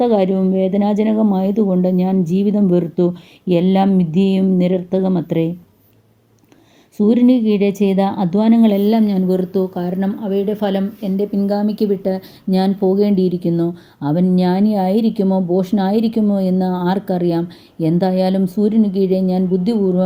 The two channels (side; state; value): both; identical; correlation 1.00